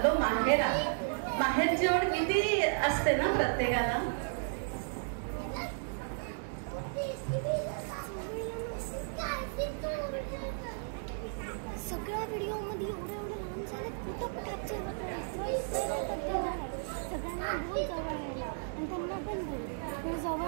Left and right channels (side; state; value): left; silent; digital silence